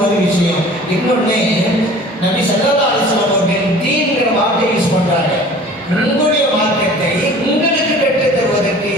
ஒரு விஷயம். இன்னொன்னு, நபி ஸல்லல்லாஹு அலைஹி வஸல்லம் அவர்கள் தீன்ங்கிற வார்த்தை யூஸ் பண்றாங்க. உங்களுடைய மார்க்கத்தை உங்களுக்கு கற்றுத் தருவதற்கு,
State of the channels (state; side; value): normal; both; correlation 0.46